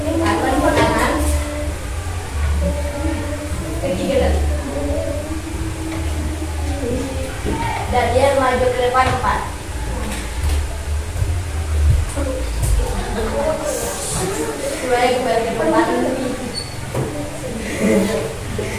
Dan dia maju ke depan 4. Kembali ke depan.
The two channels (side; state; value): both; identical; correlation 1.00